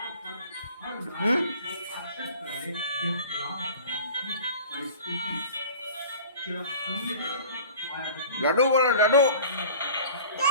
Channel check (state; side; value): inverted; both; correlation -0.44